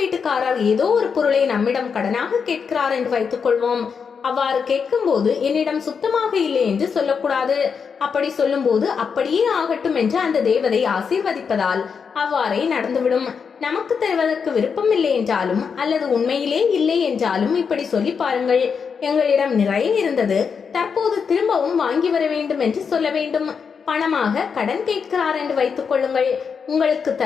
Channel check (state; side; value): quieter; right; 6.1 dB